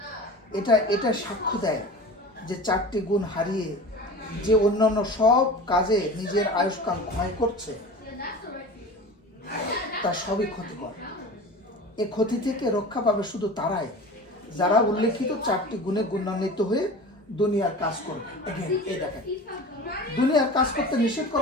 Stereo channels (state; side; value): normal; both; correlation 0.35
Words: এটা সাক্ষ্য দেয় যে 4টি গুণ হারিয়ে যে অন্যান্য সব কাজে নিজের আয়ুষ্কাল ক্ষয় করছে, তা সবই ক্ষতিকর। এ ক্ষতি থেকে রক্ষা পাবে শুধু তারাই যারা উল্লেখিত 4টি গুণে গুণান্বিত হয়ে দুনিয়ার কাজ করবে। এই দেখেন, দুনিয়ার কাজ করতে নিষেধ